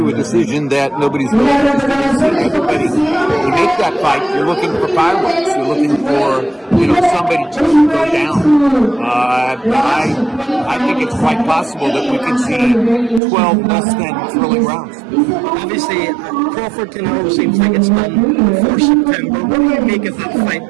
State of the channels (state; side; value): drops out; left; at 13.2 s